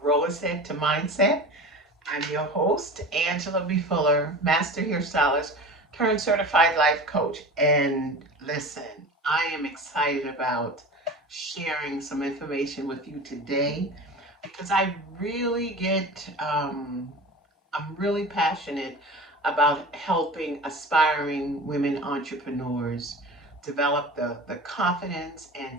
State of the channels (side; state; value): both; normal; correlation 0.34